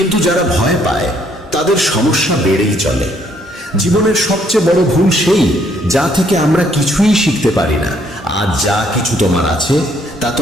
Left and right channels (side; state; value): both; normal; correlation 0.68